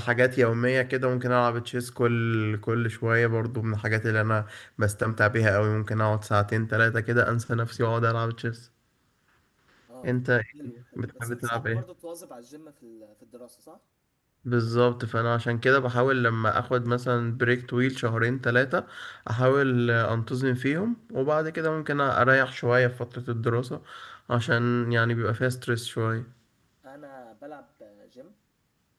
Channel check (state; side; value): identical; both; correlation 1.00